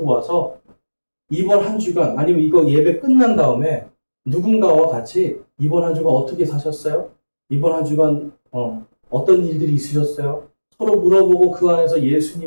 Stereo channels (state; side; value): inverted; both; correlation -1.00